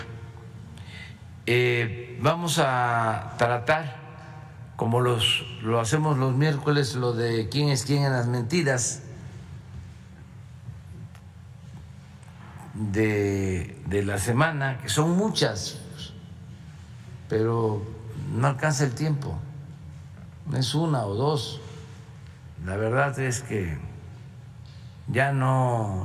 Vamos a tratar, como lo hacemos los miércoles, lo de quién es quién en las mentiras de la semana, que son muchas, pero no alcanza el tiempo, no es una o dos. La verdad es que ya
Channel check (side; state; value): both; identical; correlation 1.00